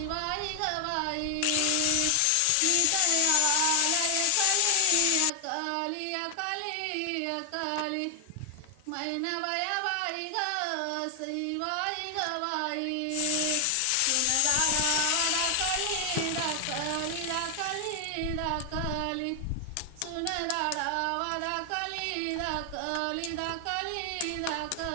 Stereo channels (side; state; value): both; different; correlation 0.00